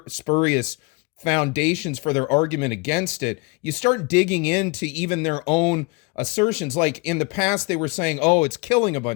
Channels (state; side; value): quieter; right; 28.1 dB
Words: foundations for their argument against it, you start digging into even their own assertions. Like in the past, they were saying, "Oh, it's killing a